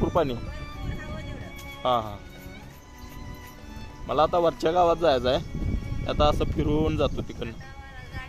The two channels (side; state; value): both; identical; correlation 1.00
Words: पाणी. हा. मला आता वरच्या गावात जायचं आहे. आता असं फिरून जातो तिकडनं.